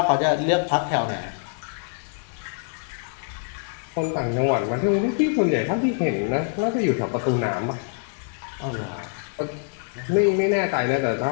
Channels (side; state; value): right; silent; 62 dB below the other